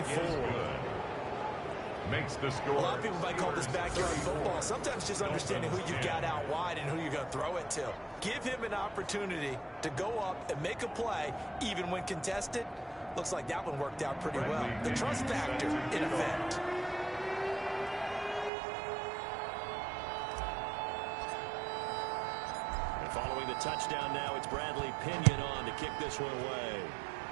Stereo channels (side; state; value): left; drops out; at 18.5 s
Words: Makes the score. A lot of people might call this backyard football. Sometimes just understanding who you've got out wide and who you're going to throw it to. Give him an opportunity to go up and make a play, even when contested. Looks like that one worked out pretty well. The trust factor in effect. And following the touchdown now, it's Bradley Pinion on to kick this one away.